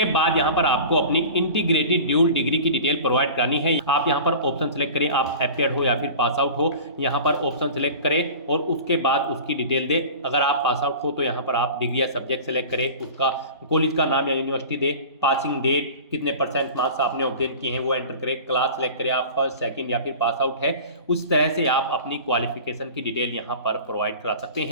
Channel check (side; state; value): both; inverted; correlation -0.38